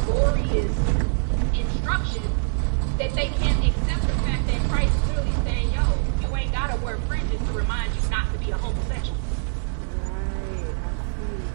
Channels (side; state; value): left; silent; 62 dB below the other